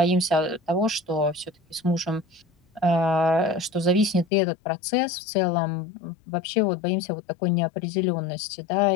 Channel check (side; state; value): right; drops out; at 4.2 s